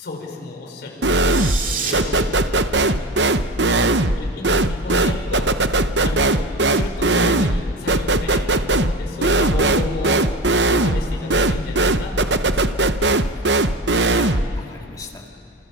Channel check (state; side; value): normal; both; correlation 0.29